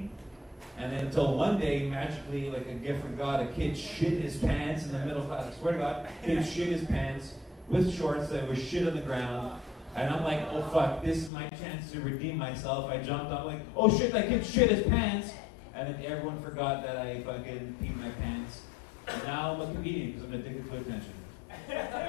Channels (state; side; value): drops out; right; at 11.3 s